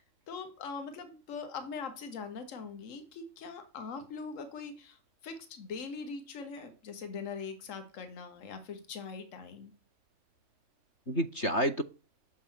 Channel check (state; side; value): late; right; 3.8 ms